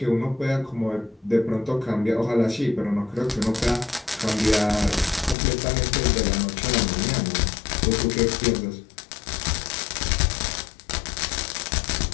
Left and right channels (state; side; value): drops out; right; at 5.4 s